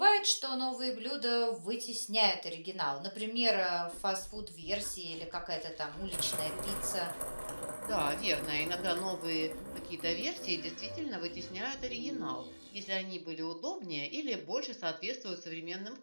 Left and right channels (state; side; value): inverted; both; correlation -1.00